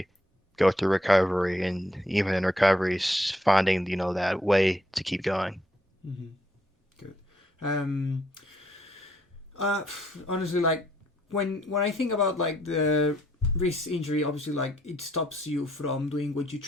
go through recovery, and even in recovery, finding, that way to keep going. Mm-hmm. Good. Um, Uh, honestly, like when I think about like the wrist injury, obviously like it stops you from doing what you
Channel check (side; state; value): both; normal; correlation 0.70